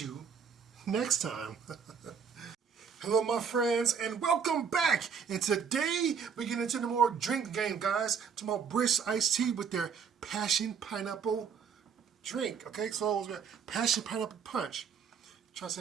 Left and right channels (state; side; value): quieter; left; 6.6 dB